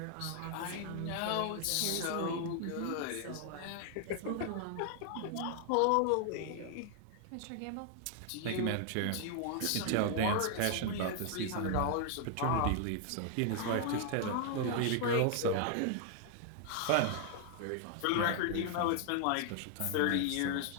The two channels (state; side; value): different; both; correlation 0.00